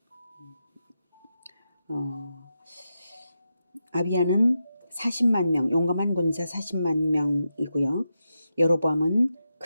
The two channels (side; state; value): both; inverted; correlation -0.88